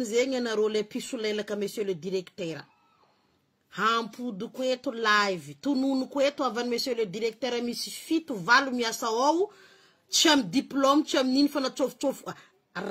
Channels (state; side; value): identical; both; correlation 1.00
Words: na role pisulela ka monsieur le directeur. Hampu du kweto live. Tu nunu kweto avant monsieur le directeur mi suffit tu valu mi asaou. Cham diplôme cham nin fana chof.